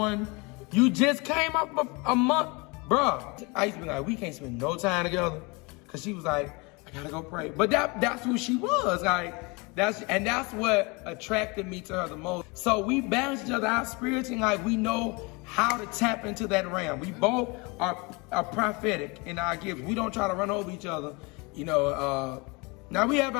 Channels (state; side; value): quieter; right; 27.9 dB